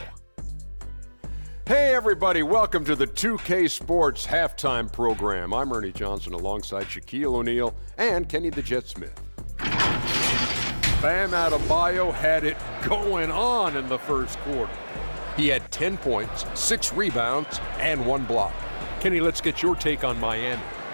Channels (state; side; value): inverted; both; correlation -1.00